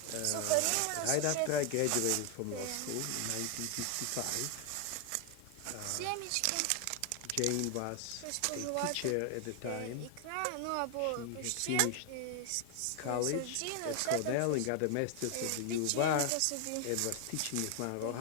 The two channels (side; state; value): both; different; correlation 0.00